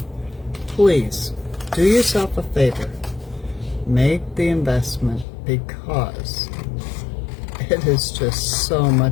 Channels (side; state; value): right; drops out; at 5.2 s